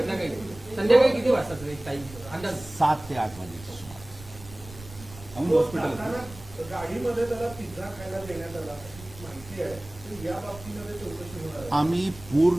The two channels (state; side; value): noise; right; rumble, 17 dB below the sound